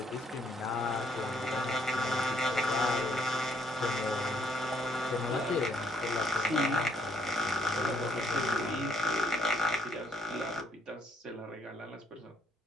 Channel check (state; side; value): normal; both; correlation 0.70